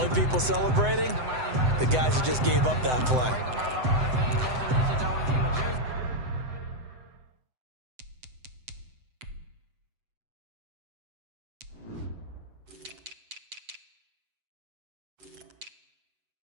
people celebrating, the guys who just gave up that play.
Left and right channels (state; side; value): late; left; 7.9 ms